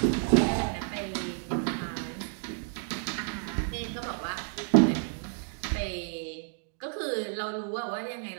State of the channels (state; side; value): silent; left; 57 dB below the other